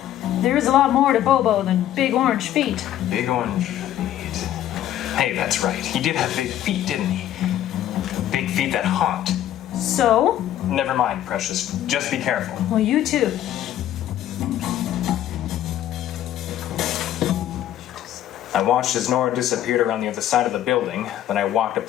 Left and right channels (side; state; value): right; quieter; 12.0 dB